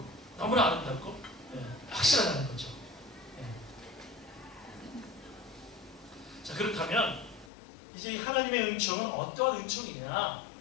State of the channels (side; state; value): right; drops out; at 7.5 s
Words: 너무나 아름답고 확실하다는 거죠. 자 그렇다면 이제 하나님의 은총은 어떠한 은총이냐